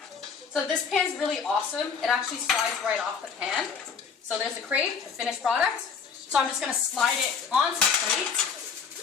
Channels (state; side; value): quieter; right; 6.1 dB